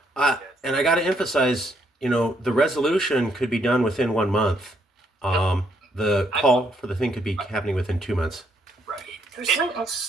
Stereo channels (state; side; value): normal; both; correlation 0.72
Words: And I got to emphasize, the resolution could be done within 1 month. The call for the thing could be happening within 2 months. Right. There's something